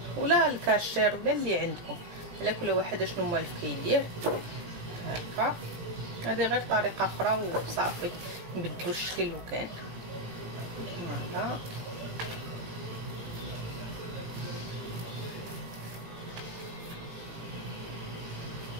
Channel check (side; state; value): left; late; 17 ms